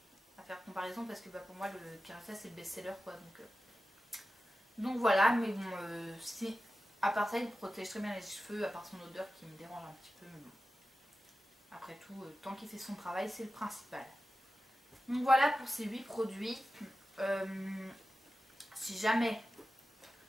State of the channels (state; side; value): normal; both; correlation 0.94